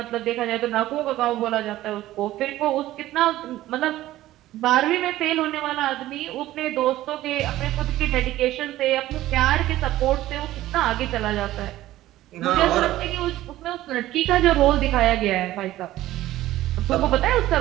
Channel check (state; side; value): quieter; left; 15.1 dB